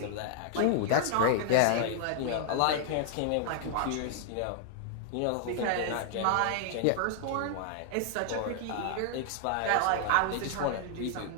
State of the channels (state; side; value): different; both; correlation 0.00